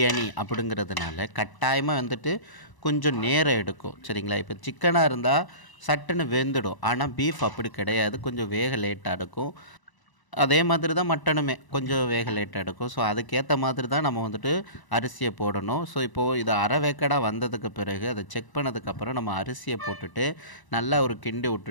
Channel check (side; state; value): right; late; 1.0 ms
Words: அப்படிங்கிறதுனால கட்டாயமாக வந்துட்டு கொஞ்சம் நேரம் எடுக்கும், சரிங்களா? இப்போ சிக்கனாக இருந்தால் சட்டுன்னு வெந்துடும், ஆனால் பீஃப் அப்படி கிடையாது, கொஞ்சம் வேக லேட்டாக எடுக்கும். அதே மாதிரி தான் மட்டனுமே கொஞ்சம் வேக லேட்டாக எடுக்கும். ஸோ அதுக்கேற்ற மாதிரி தான் நம்ம வந்துட்டு அரிசியை போடணும். ஸோ இப்போது இது அரை வேக்காடாக வந்ததுக்கு பிறகு அதை செக் பண்ணதுக்கப்புறம் நம்ம அரிசியை போட்டுட்டு நல்லா ஒரு கிண்டி